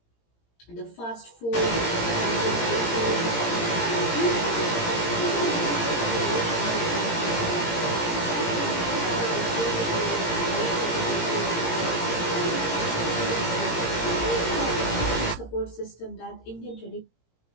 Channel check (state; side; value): late; right; 17 ms